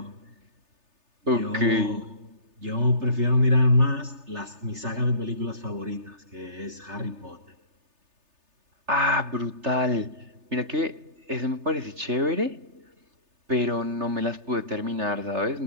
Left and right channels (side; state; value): left; late; 3.3 ms